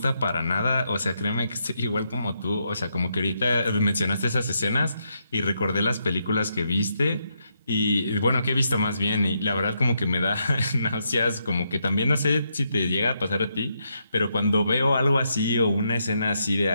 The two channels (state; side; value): inverted; both; correlation -0.80